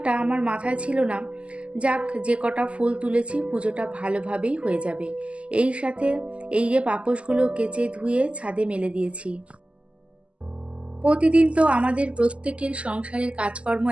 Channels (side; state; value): left; late; 0.057 ms